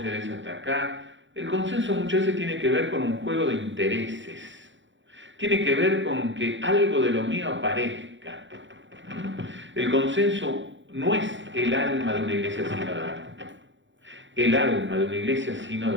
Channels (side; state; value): left; late; 0.54 ms